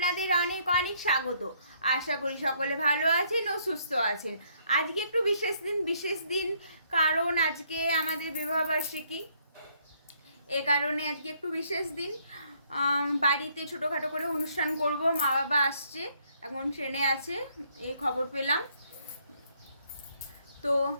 অনেক অনেক স্বাগত। আশা করি সকলে ভালো আছেন ও সুস্থ আছেন। আজকে একটু বিশেষ দিন কারণ আজকে আমাদের বিবাহবার্ষিকী। এ কারণে আজকে একটু বিশেষ দিন, বাড়িতে ছোটোখাটো করে অনুষ্ঠান করব। মা বাবা আসছে, এখন ট্রেনে আছে, এই খবর পেলাম। তো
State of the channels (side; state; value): both; inverted; correlation -0.68